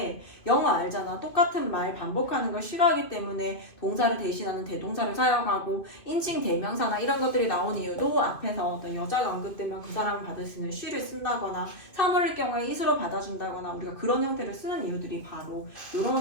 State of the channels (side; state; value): right; late; 2.5 ms